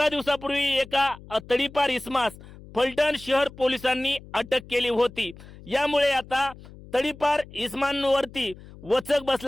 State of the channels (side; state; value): left; noise; hum, 19 dB below the sound